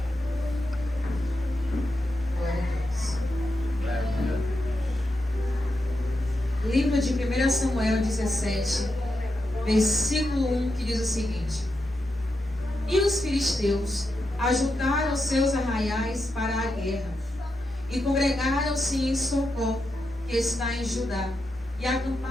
Glória a Deus. Aleluia. Livro de 1 Samuel 17, versículo 1, que diz o seguinte: E os filisteus ajuntaram seus arraiais para a guerra, e congregaram-se em Socó, que está em Judá, e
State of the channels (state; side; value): normal; both; correlation 0.86